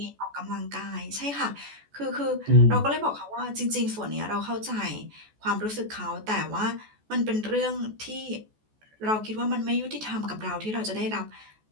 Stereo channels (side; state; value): left; late; 14 ms